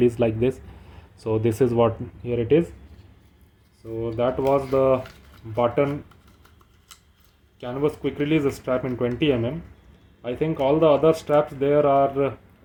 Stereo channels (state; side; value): identical; both; correlation 1.00